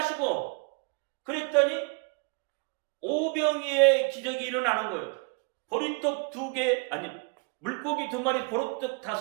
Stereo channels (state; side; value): quieter; left; 34.0 dB